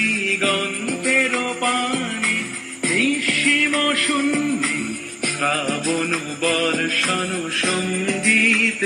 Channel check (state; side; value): identical; both; correlation 1.00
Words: পানে, নিঃসীম শূন্যে শ্রাবণ বর্ষণ